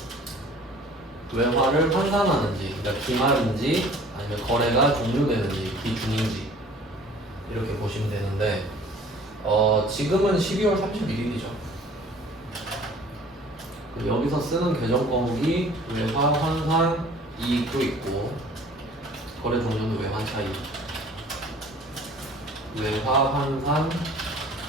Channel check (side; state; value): both; normal; correlation 0.50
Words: 외화를 환산하는지, 그러니까 기말인지 아니면 거래가 종료되는지 기중인지 이렇게 보시면 되는데 지금은 12월 31일이죠. 여기서 쓰는 계정 과목이 외화 환산 이익도 있고 거래 종료는 외환 차익, 외화 환산